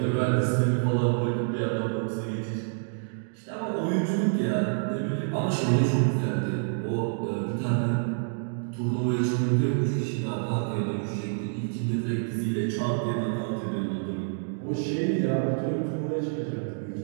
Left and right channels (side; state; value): left; silent; digital silence